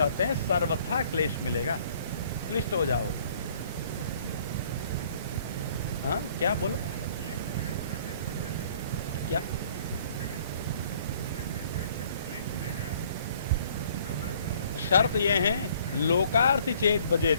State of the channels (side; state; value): both; inverted; correlation -0.58